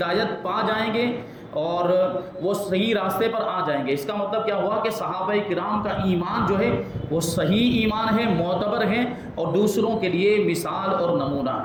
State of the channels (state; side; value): identical; both; correlation 1.00